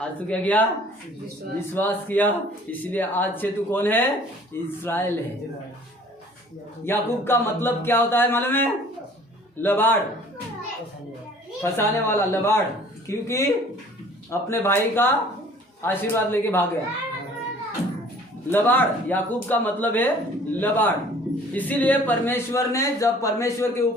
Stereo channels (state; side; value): normal; both; correlation 0.52